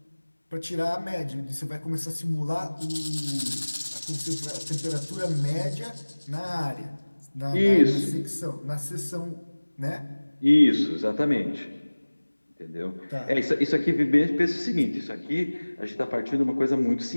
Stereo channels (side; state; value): both; inverted; correlation -1.00